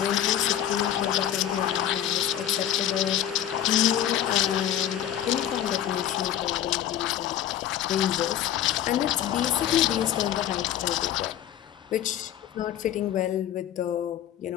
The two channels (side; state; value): right; quieter; 11.0 dB